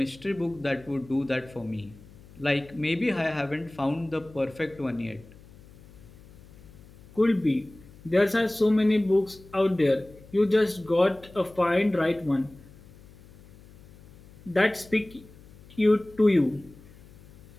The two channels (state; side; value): noise; left; hum, 22 dB below the sound